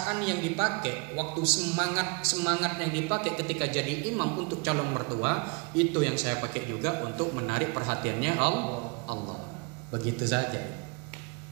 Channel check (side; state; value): left; quieter; 31.2 dB